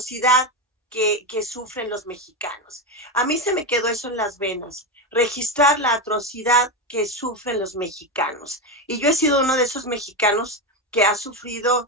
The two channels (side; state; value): both; normal; correlation 0.14